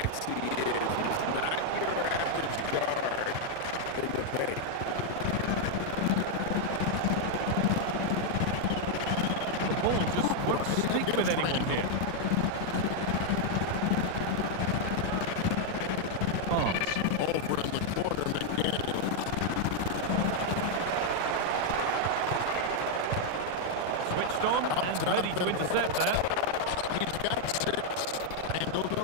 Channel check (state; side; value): different; both; correlation 0.00